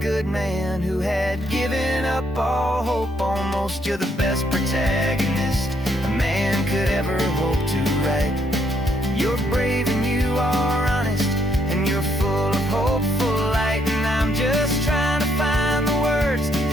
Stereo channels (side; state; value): both; normal; correlation 0.72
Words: man who had given up all hope almost. You're the best protagonist a man could ever hope to write. You're brave and you are honest, and you're full of hopeful light. And I'm just trying to find the words